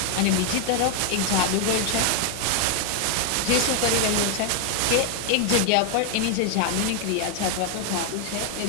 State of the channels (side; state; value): both; different; correlation 0.00